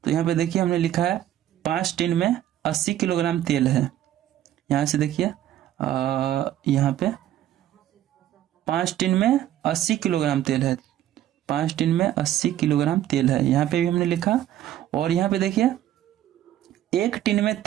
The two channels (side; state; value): left; quieter; 12.3 dB